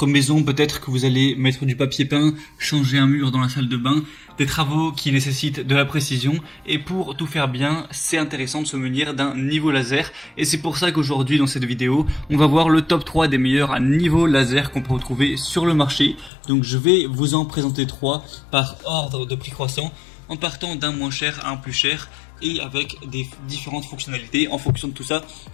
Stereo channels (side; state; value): right; drops out; at 16.3 s